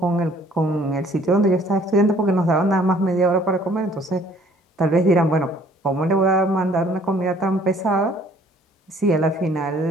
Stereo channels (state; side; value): normal; both; correlation 0.58